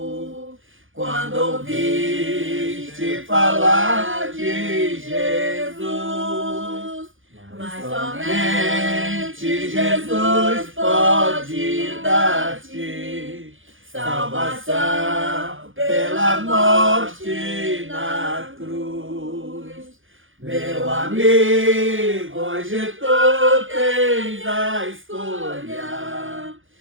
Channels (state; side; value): late; left; 0.58 ms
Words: quando ouviste falar de Jesus? Mas somente Jesus pode dar-te salvação pela morte na cruz. Meu amigo, amigo, hoje tu tens a escolha.